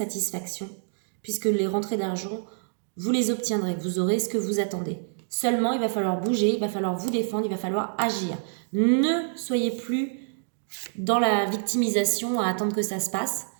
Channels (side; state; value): left; silent; digital silence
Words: puisque les rentrées d'argent, vous les obtiendrez, vous aurez ce que vous attendez. Seulement, il va falloir bouger, il va falloir vous défendre, il va falloir agir. Ne soyez plus dans la victimisation à attendre que ça se passe.